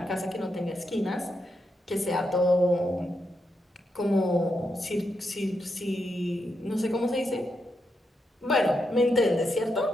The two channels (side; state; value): both; normal; correlation 0.83